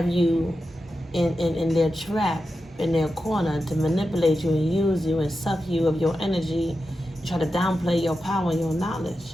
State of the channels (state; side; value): normal; both; correlation 0.90